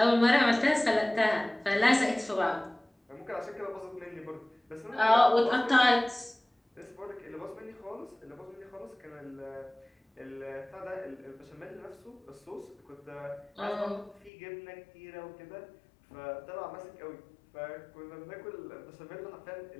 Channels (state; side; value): drops out; right; at 14.3 s